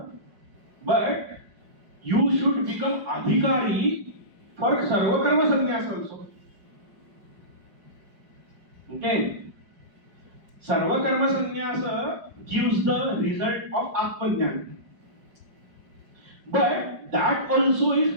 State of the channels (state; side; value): late; left; 5.2 ms